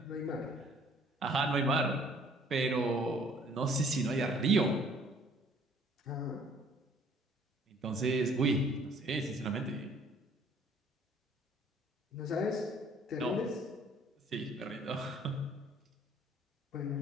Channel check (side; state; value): both; normal; correlation 0.57